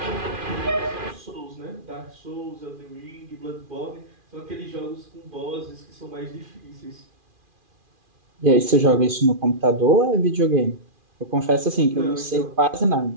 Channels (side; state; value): left; late; 2.4 ms